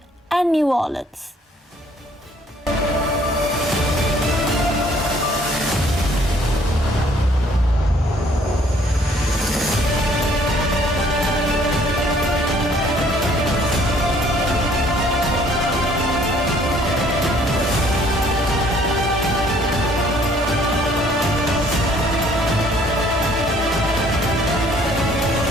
and New Orleans.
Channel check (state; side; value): normal; both; correlation 0.60